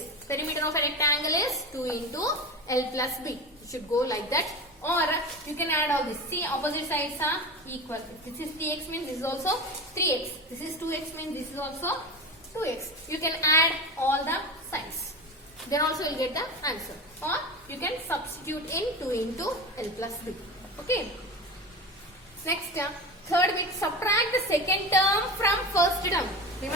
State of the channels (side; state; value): both; normal; correlation 0.26